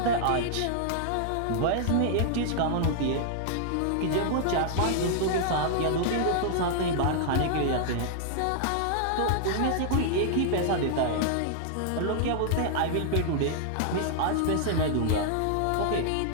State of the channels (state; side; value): different; both; correlation -0.01